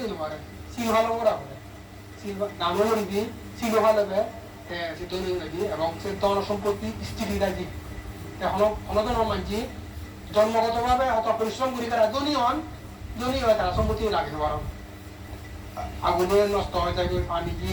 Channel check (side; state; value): both; identical; correlation 1.00